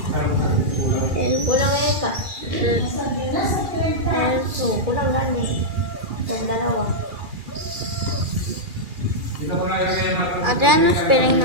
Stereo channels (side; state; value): left; late; 2.4 ms